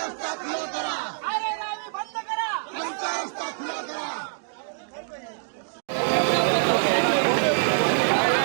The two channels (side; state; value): left; silent; digital silence